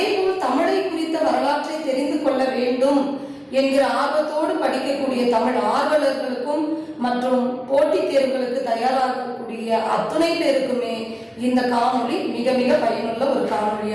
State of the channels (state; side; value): identical; both; correlation 1.00